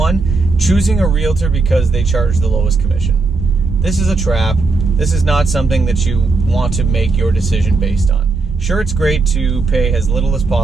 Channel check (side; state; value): left; quieter; 3.8 dB